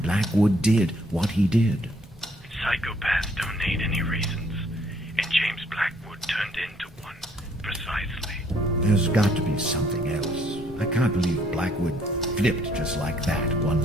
Blackwood did what he did. Psychopaths don't need any reasons, and James Blackwood turned into one, precisely. There's got to be something else. I can't believe Blackwood flipped just like that one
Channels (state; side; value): normal; both; correlation 0.65